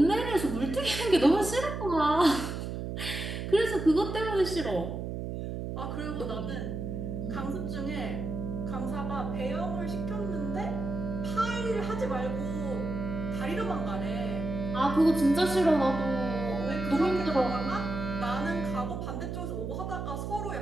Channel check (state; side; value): noise; right; hum, 5 dB below the sound